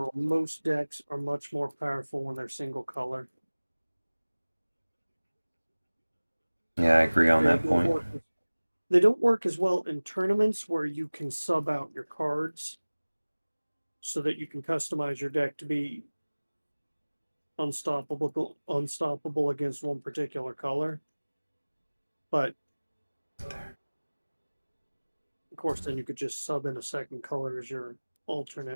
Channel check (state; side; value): inverted; both; correlation -1.00